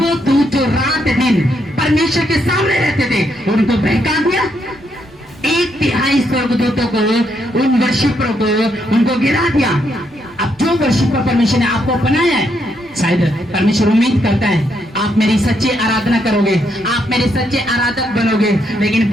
दूत जो रात दिन परमेश्वर के सामने रहते थे उनको बहका दिया। 1/3 स्वर्गदूतों को, उन वर्शिपरों को, उनको गिरा दिया। अब जो वर्शिपर परमेश्वर ने आपको बनाया है, शायद परमेश्वर उम्मीद करता है आप मेरी सच्ची आराधना करोगे, आप मेरे सच्चे आराधक बनोगे। लेकिन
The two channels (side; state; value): both; normal; correlation 0.77